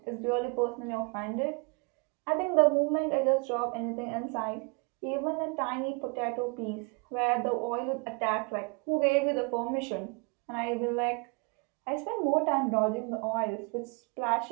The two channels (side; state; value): left; quieter; 32.0 dB